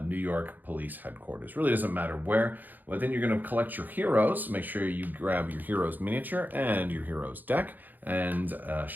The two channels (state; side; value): late; left; 0.085 ms